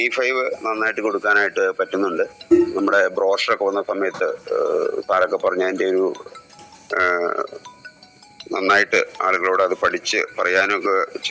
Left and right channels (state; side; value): identical; both; correlation 1.00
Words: നന്നായിട്ട് കൊടുക്കാനായിട്ട് പറ്റുന്നുണ്ട്. നമ്മുടെ ബ്രോഷറൊക്കെ വന്ന സമയത്ത് സാറൊക്കെ പറഞ്ഞ അതിൻ്റെ ഒരു നന്നായിട്ട് ആളുകളോട് അത് പഠിച്ച് പറയാനൊക്കെ